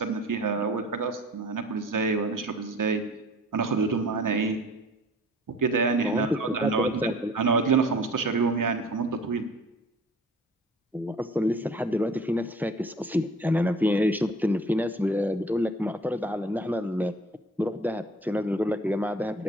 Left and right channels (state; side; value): normal; both; correlation 0.47